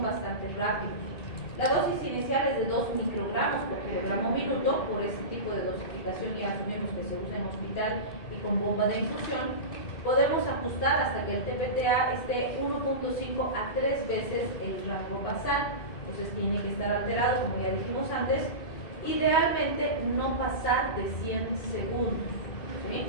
bastante rápidos. La dosis inicial es de 2 microgramos por kilogramo minuto. Por ese tipo de dosificación ya asumimos que se usa en hospital y con bomba de infusión, podemos ajustar hasta que el TPTA esté 1.5 a 3 veces el rango basal. Entonces tiene que estar alterado, como ya dijimos antes, idealmente no pasar de 100 segundos, ¿sí?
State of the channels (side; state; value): right; late; 2.6 ms